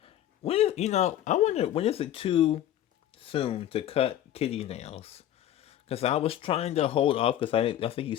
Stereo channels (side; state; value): right; quieter; 11.9 dB